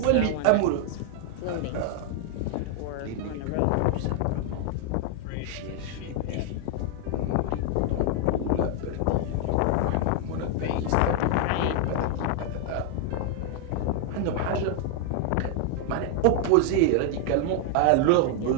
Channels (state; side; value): different; both; correlation 0.00